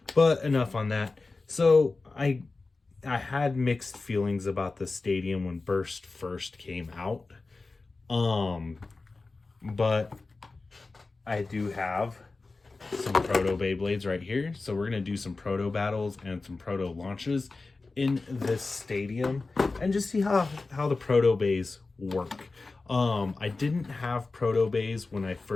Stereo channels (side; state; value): right; quieter; 3.7 dB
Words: but enough on that. So I had mixed feelings about the stadium when Burst first came out. But I do have some proto Beyblades right here. So we're going to do some proto battles and some proto launches in this stadium and just see how the proto bays work. I didn't have proto bays when I